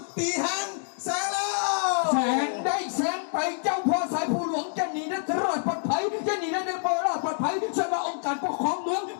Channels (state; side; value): silent; right; digital silence